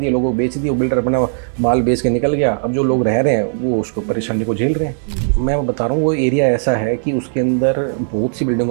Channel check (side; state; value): left; silent; 60 dB below the other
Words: लोगों को बेच दिए, वो बिल्डर अपना माल बेच के निकल गया। अब जो लोग रह रहे हैं वो उसको परेशानी को झेल रहे हैं। मैं बता रहा हूँ वो एरिया ऐसा है कि उसके अंदर बहुत सी